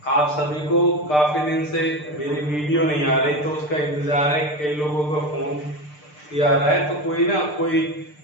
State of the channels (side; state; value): right; late; 6.7 ms